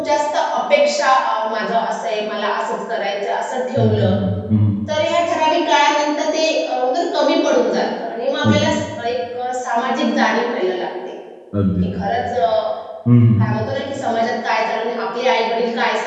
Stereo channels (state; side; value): identical; both; correlation 1.00